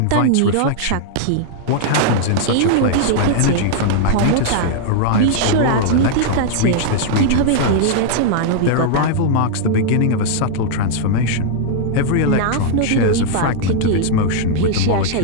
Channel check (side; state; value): both; different; correlation -0.01